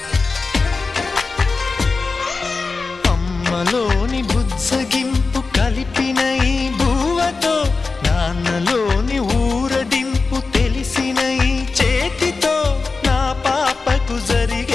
అమ్మలోని బుజ్జగింపు కలిపిన ఈ భూవతో నాన్నలోని ఊరడింపు తెలిసిన ఈ చేతితో నా పాపకు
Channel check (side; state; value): right; quieter; 4.1 dB